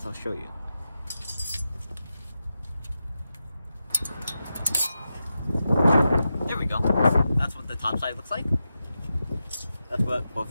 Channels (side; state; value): both; inverted; correlation -0.90